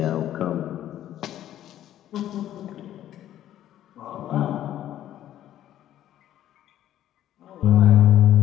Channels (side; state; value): right; quieter; 12.1 dB